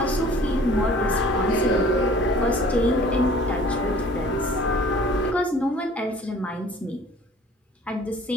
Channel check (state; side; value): normal; both; correlation 0.50